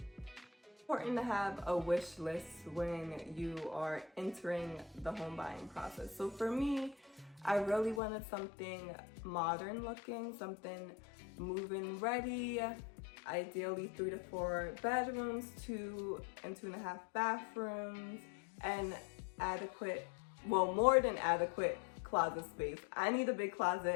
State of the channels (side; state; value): right; drops out; at 8.0 s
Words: important to have a wish list when you are entering the home buying process. So for me, I really wanted something modern looking, something move-in ready, ideally 3 to 4 bedrooms, 2 and 2.5 bathrooms, and more than adequate closet space. I need a big